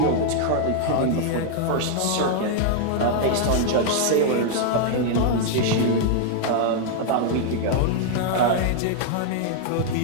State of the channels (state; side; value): different; both; correlation -0.01